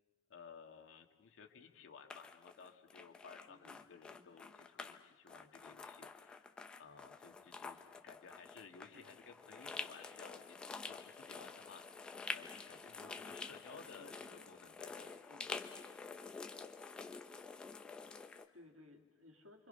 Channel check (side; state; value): right; quieter; 4.3 dB